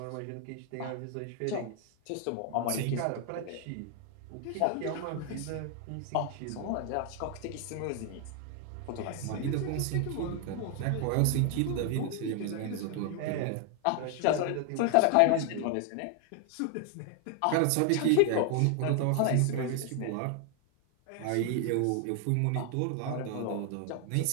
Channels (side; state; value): both; different; correlation 0.00